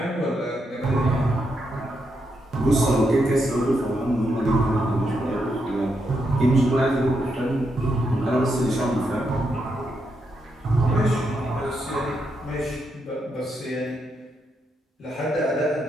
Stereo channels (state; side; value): normal; both; correlation 0.81